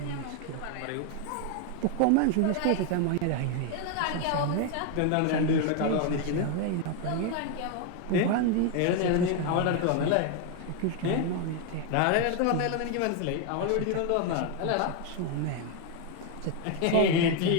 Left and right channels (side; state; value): both; different; correlation 0.01